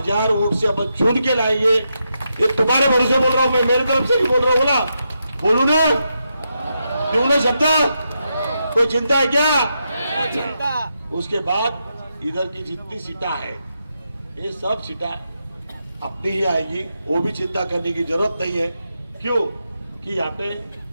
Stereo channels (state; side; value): inverted; both; correlation -0.84